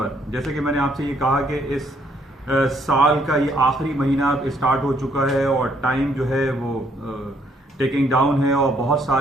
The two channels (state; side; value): normal; both; correlation 0.69